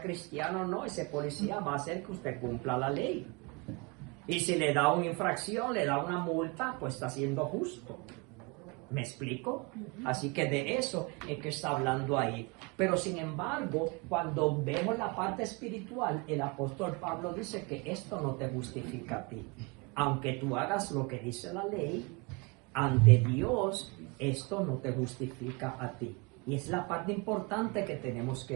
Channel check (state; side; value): quieter; left; 28.8 dB